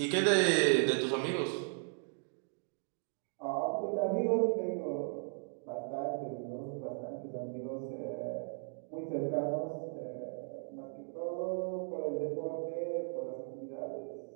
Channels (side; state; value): left; silent; 53 dB below the other